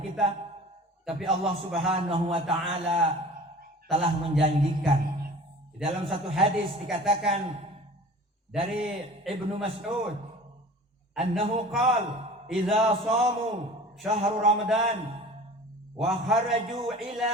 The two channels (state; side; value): normal; both; correlation 0.41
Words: Tapi Allah Subhanahu wa taala telah menjanjikan. Di dalam satu hadis dikatakan dari Ibnu Mas'ud annahu qala idza shamu syahr Ramadan wa kharaju ila